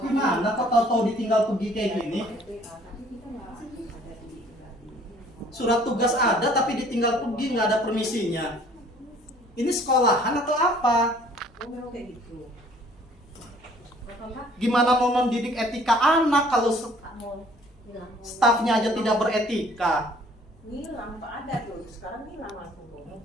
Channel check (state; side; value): normal; both; correlation 0.56